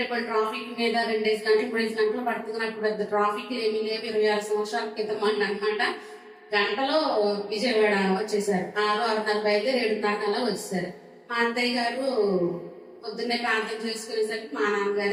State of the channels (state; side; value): identical; both; correlation 1.00